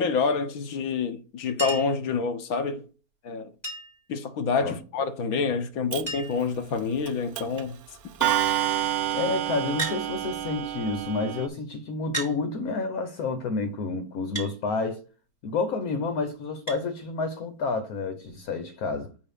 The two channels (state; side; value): late; right; 4.3 ms